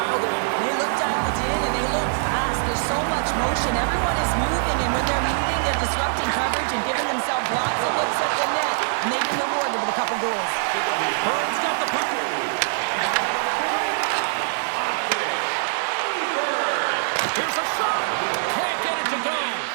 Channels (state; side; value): silent; left; 58 dB below the other